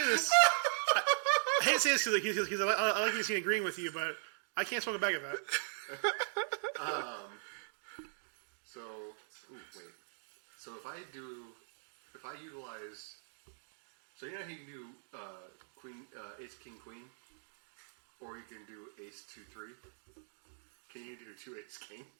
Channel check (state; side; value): silent; left; digital silence